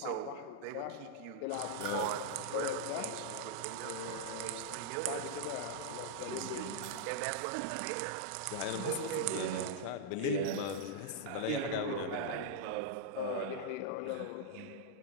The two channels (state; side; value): different; both; correlation -0.02